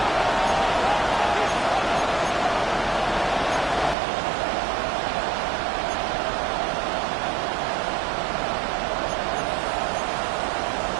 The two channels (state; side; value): drops out; left; at 4.0 s